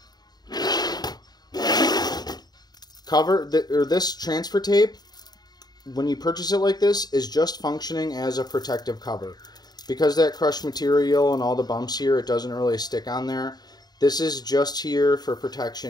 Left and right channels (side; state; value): right; late; 0.20 ms